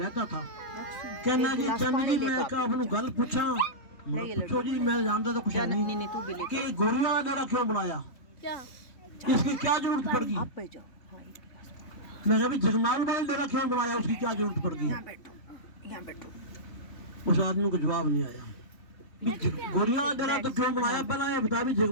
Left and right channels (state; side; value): late; right; 3.5 ms